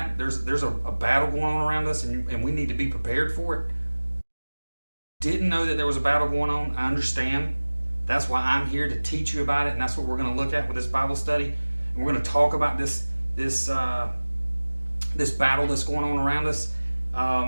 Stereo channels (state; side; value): inverted; both; correlation -1.00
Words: There's a battle going on around us, and we need to be prepared for it. Didn't know that there was a battle going on. I understand. That's why I'm here to teach you about it, and that's what we're going to look at with this Bible study. And we're going to talk about this battle that's going on around us.